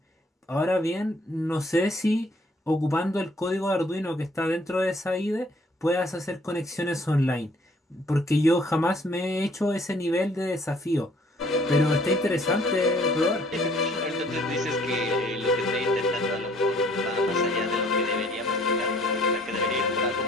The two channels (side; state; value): both; normal; correlation 0.60